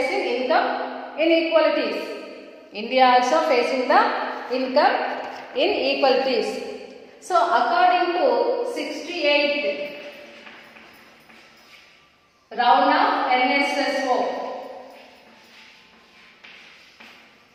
income inequalities. India also facing the income inequalities. So according to 68th round of NSSO.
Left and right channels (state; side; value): identical; both; correlation 1.00